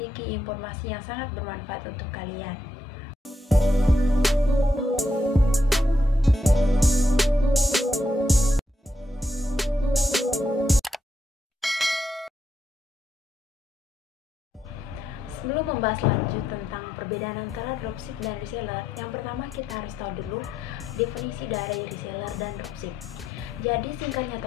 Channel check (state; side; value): normal; both; correlation 0.81